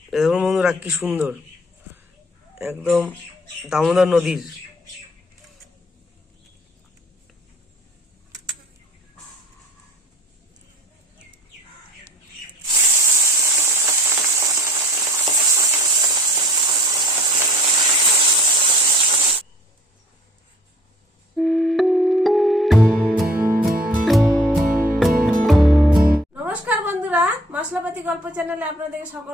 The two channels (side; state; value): both; normal; correlation 0.51